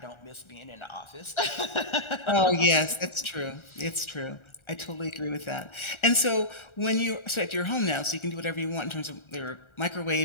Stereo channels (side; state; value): right; late; 1.4 ms